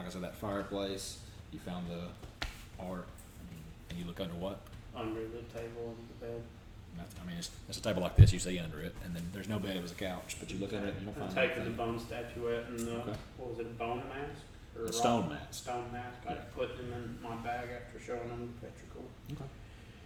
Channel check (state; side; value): identical; both; correlation 1.00